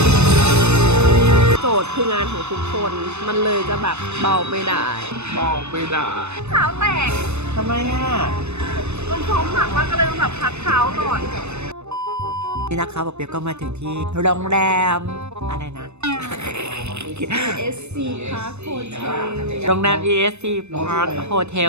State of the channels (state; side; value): late; left; 0.81 ms